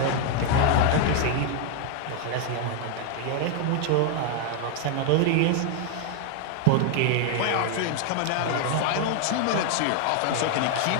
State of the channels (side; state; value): both; different; correlation 0.00